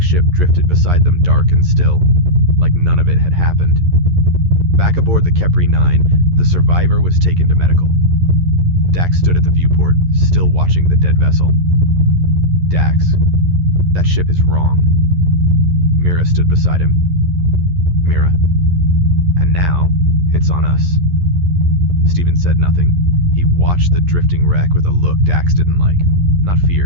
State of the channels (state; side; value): late; left; 11 ms